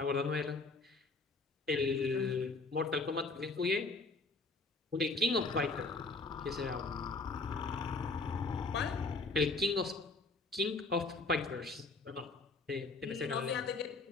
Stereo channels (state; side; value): quieter; right; 3.6 dB